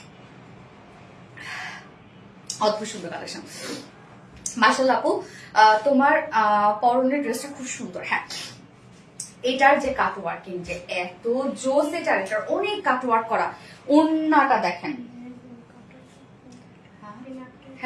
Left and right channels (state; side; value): identical; both; correlation 1.00